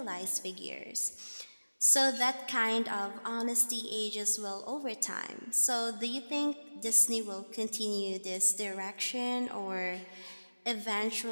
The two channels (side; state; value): both; inverted; correlation -1.00